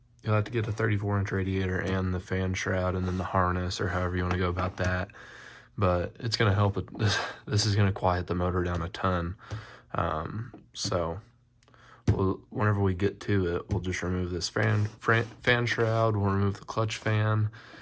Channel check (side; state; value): both; identical; correlation 1.00